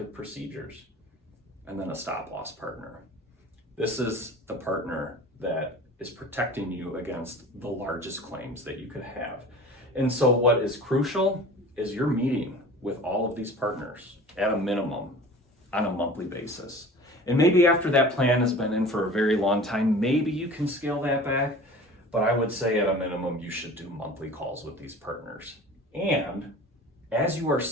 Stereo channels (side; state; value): both; normal; correlation 0.40